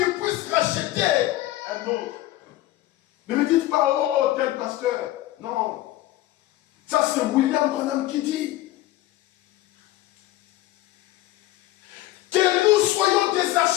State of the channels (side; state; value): right; quieter; 15.9 dB